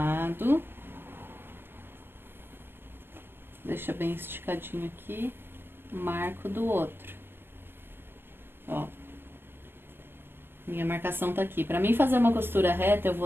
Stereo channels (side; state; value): left; late; 0.10 ms